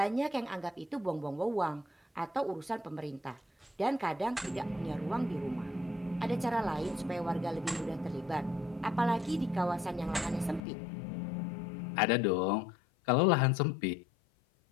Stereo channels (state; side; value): drops out; right; at 10.6 s